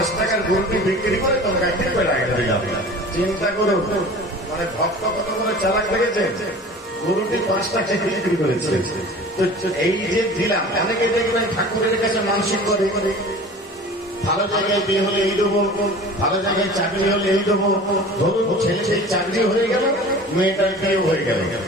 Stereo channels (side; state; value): both; normal; correlation 0.41